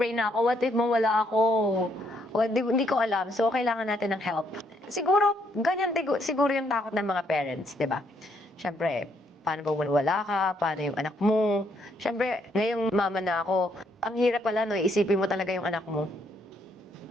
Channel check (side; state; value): both; normal; correlation 0.72